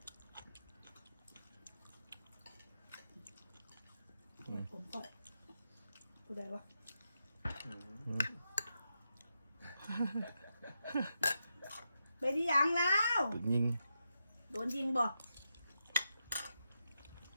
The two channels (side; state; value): both; inverted; correlation -0.86